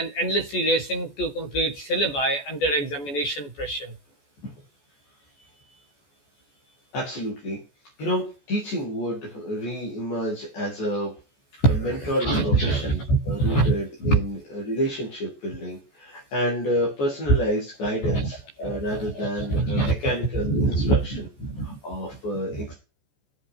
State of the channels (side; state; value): right; late; 14 ms